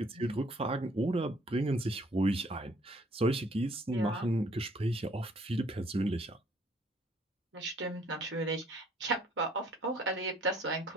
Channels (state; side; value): normal; both; correlation 0.61